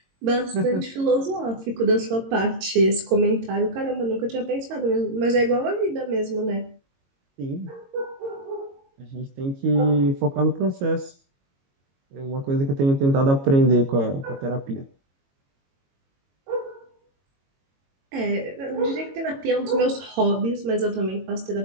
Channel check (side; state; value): left; late; 22 ms